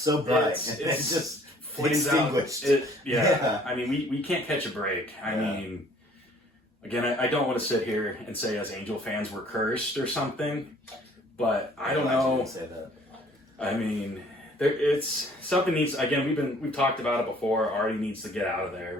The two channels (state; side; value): normal; both; correlation 0.57